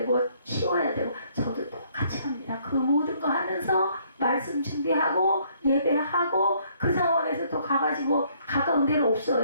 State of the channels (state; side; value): inverted; both; correlation -0.65